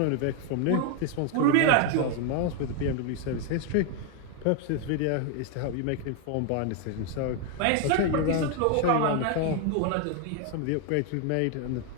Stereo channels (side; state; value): both; different; correlation 0.00